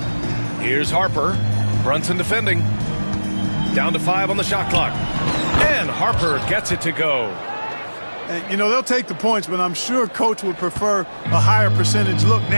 Here's Harper. Brunson defending. Down to 5 on the shot clock. And Harper gets it to go. And, you know, they'll take the points, but I'm sure Coach would prefer a higher percentage look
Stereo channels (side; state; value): both; inverted; correlation -1.00